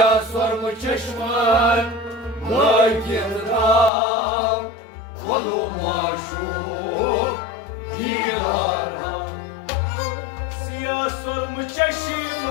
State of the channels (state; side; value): drops out; right; at 3.9 s